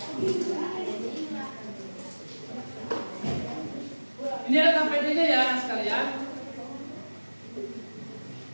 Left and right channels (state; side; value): inverted; both; correlation -1.00